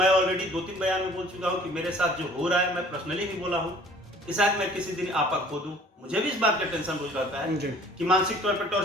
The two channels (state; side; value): normal; both; correlation 0.52